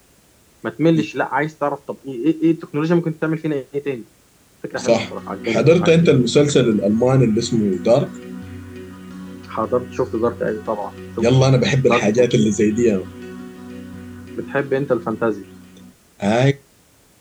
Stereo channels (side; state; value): both; identical; correlation 1.00